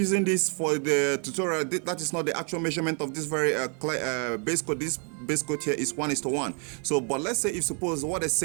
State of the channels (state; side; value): quieter; left; 39.8 dB